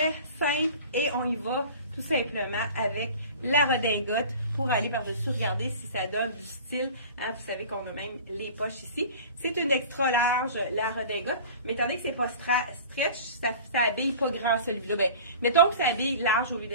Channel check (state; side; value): inverted; both; correlation -0.41